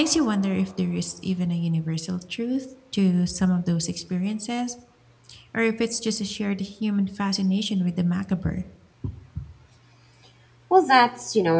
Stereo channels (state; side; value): identical; both; correlation 1.00